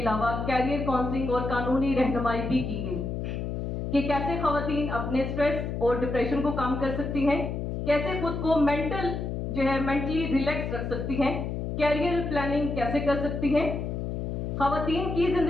अलावा कैरियर काउंसलिंग और कानूनी रहनुमाई भी की गई कि कैसे खवातीन अपने स्ट्रेस और डिप्रेशन को कम कर सकती हैं, कैसे खुद को मेंटली रिलैक्स रख सकती हैं, कैरियर प्लानिंग कैसे कर सकती हैं। खवातीन की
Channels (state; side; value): noise; left; hum, 3 dB below the sound